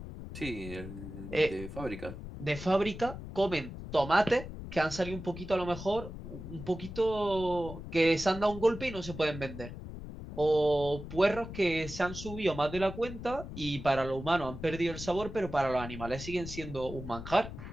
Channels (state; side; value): noise; left; rumble, 10 dB below the sound